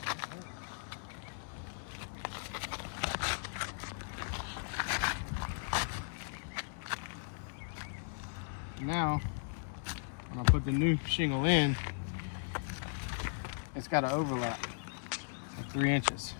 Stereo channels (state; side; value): silent; right; 53 dB below the other